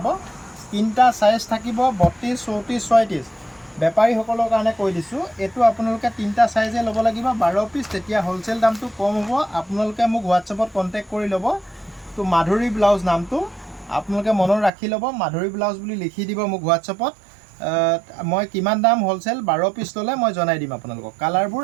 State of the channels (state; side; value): drops out; left; at 14.7 s